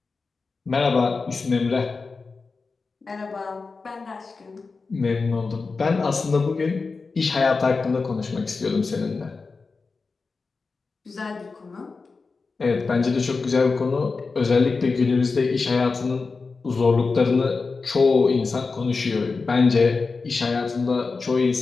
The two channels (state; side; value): quieter; right; 4.3 dB